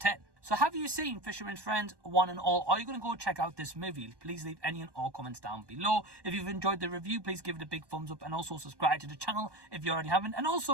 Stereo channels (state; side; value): late; left; 1.1 ms